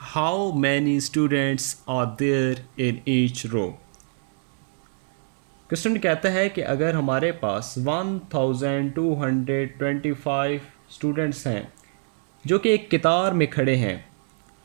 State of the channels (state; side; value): silent; left; digital silence